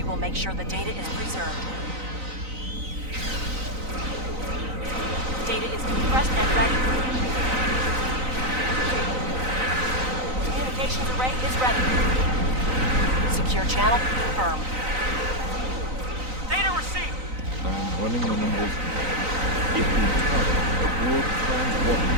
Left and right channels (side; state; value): left; late; 3.9 ms